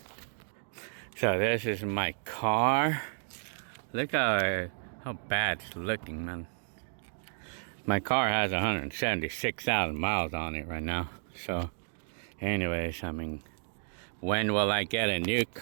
So this is my car. Look how bad it's looking, man. My car has 176,000 miles on it right now. So, anyways, I mean, when will I get a new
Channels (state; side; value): silent; left; digital silence